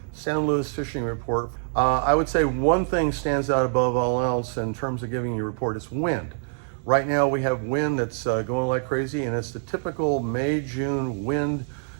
San Luis fishing report. I would say one thing stands out above all else in terms of giving you a report is wind. Right now we have wind that's going like crazy, and it's the typical May-June wind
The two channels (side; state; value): left; silent; digital silence